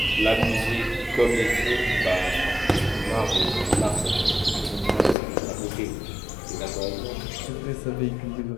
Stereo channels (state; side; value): drops out; right; at 5.2 s